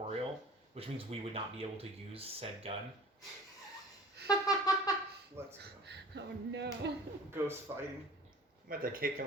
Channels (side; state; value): both; normal; correlation 0.45